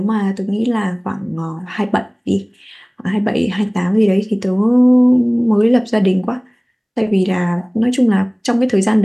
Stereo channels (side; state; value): both; identical; correlation 1.00